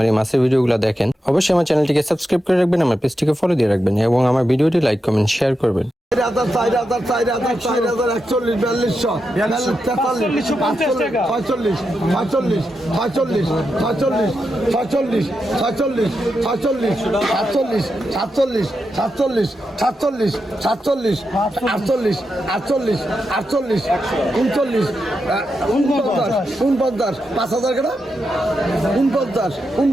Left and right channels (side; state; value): both; normal; correlation 0.87